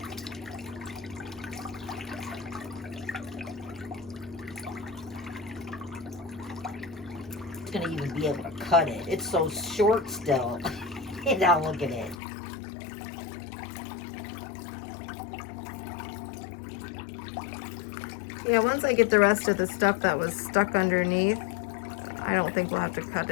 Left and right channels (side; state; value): right; drops out; at 12.2 s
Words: It's gonna even be able to cut it. It's so short still. And now look at it. Yeah, once I get the rest of the stuff that was stuck underneath, I don't think we'll have to cut